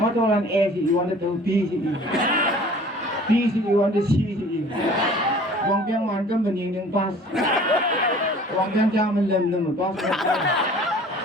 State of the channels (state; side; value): normal; both; correlation 0.48